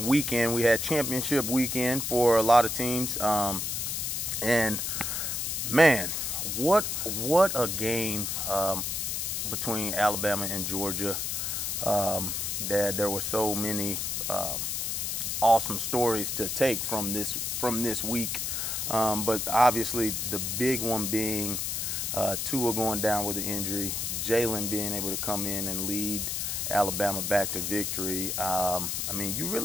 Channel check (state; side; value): noise; left; hiss, 1 dB below the sound